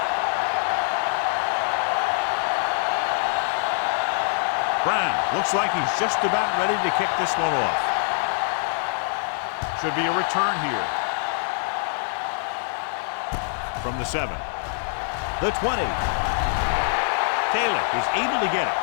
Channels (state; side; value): silent; right; digital silence